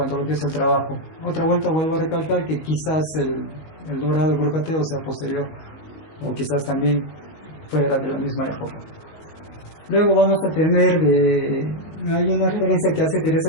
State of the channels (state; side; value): late; right; 19 ms